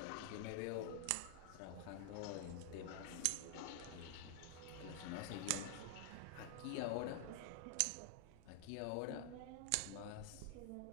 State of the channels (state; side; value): different; both; correlation 0.00